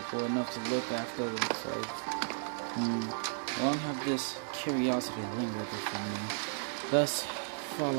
enough to look after themselves. Long have this curiosity lingered within me. Thus,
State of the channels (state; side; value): silent; left; 55 dB below the other